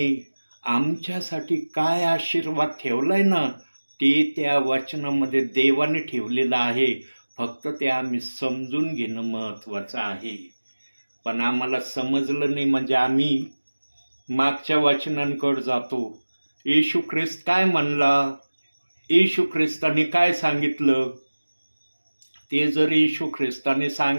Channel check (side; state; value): both; inverted; correlation -1.00